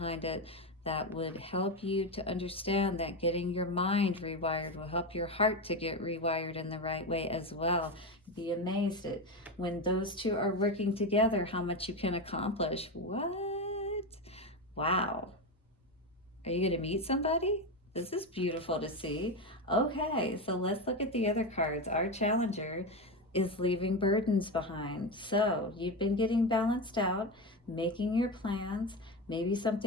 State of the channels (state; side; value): normal; both; correlation 0.16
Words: it that would help you to understand that getting your mind rewired will help your heart to get rewired in the right way as well. Be amazed at when those two are working together, how much you can accomplish. What? Wow. Are you going to meet somebody? This is beautiful to see. Okay, so let's look at the other cards. Our challenger is leaving burdens behind. So you've been getting balanced out, making your plans. Maybe